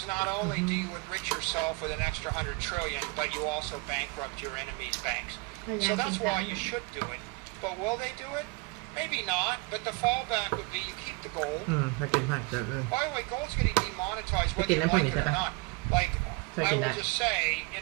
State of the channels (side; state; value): left; quieter; 27.3 dB